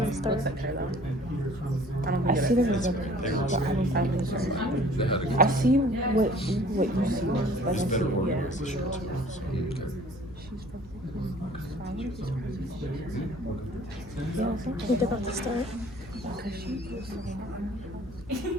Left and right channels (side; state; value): both; normal; correlation 0.51